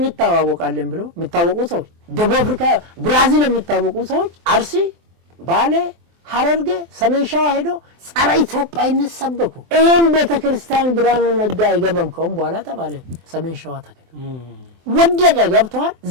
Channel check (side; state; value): left; late; 24 ms